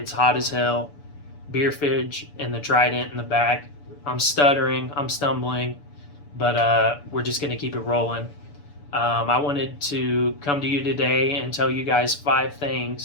hot as hell. Beer fridge and the Trident in the back. I'm stuttering, I'm stumbling, but we're just gonna keep it rolling. I wanted to come to you today and tell you guys 5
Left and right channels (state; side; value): late; right; 6.9 ms